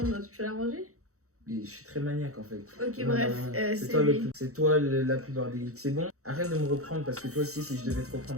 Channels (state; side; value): late; left; 0.64 ms